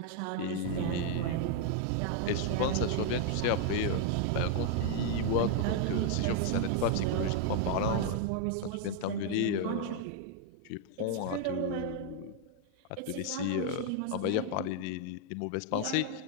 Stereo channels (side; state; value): both; different; correlation 0.00